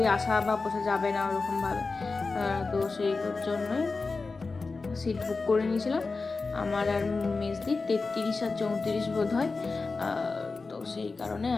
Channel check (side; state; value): right; quieter; 4.0 dB